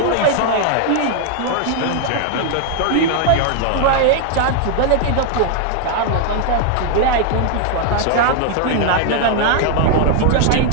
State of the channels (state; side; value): different; both; correlation 0.00